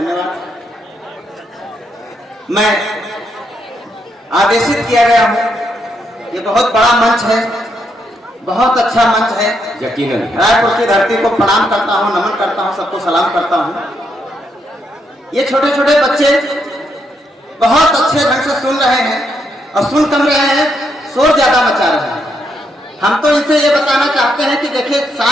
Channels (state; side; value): normal; both; correlation 0.78